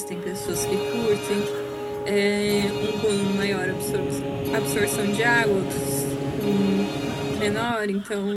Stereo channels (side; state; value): both; identical; correlation 1.00